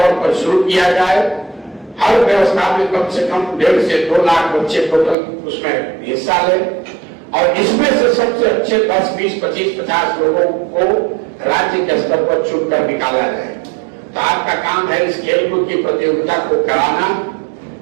पर शुरू किया जाए। हर व्यवस्था में कम से कम 1.5 से 2 लाख बच्चे टोटल उसमें हिस्सा लें और इसमें से सबसे अच्छे 10, 20, 25, 50 लोगों को राज्य के स्तर पर चुनकर निकाला जाए। तो आपका काम है इस खेलकूद की प्रतियोगिता को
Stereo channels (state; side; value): drops out; left; at 5.2 s